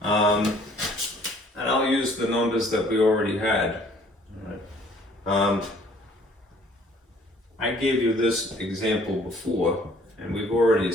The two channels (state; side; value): normal; both; correlation 0.57